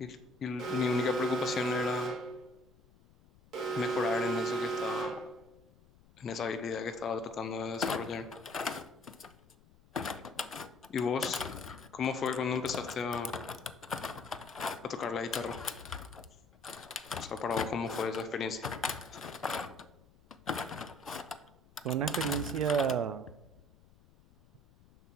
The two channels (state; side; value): noise; left; rumble, 27 dB below the sound